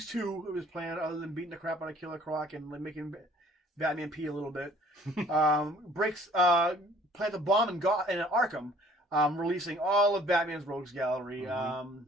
2 of his plan, other than beating the crap out of Killer Croc and like making Batman pee a little bit, plants a bomb in Arkham, releasing all of Batman's rogues gallery. The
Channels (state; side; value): normal; both; correlation 0.56